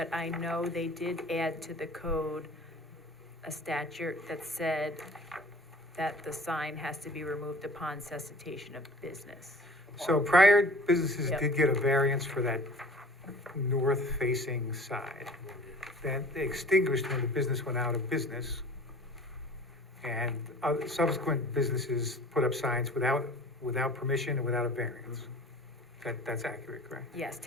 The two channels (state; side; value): normal; both; correlation 0.46